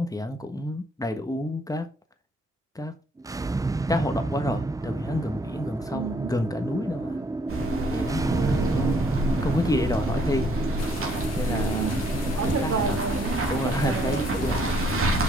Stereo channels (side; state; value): both; normal; correlation 0.66